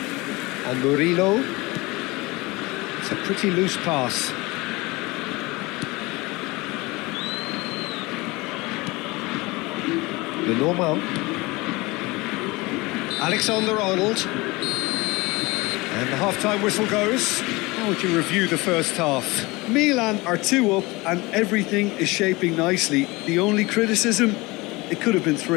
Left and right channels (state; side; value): quieter; right; 23.0 dB